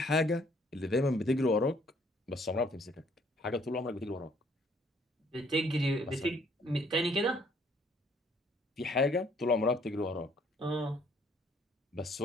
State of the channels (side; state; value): both; normal; correlation 0.63